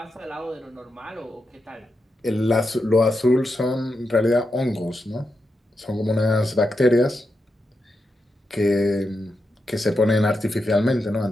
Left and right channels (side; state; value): both; normal; correlation 0.87